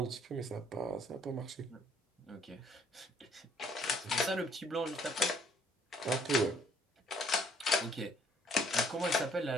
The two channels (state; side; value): normal; both; correlation 0.62